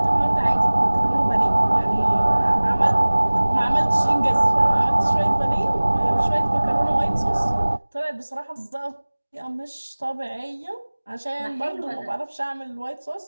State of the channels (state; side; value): inverted; both; correlation -1.00